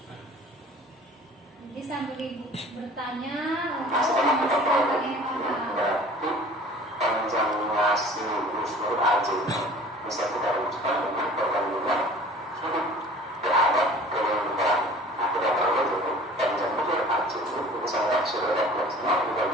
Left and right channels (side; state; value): both; normal; correlation 0.46